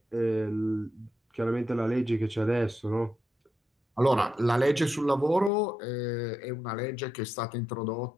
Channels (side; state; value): right; drops out; at 5.5 s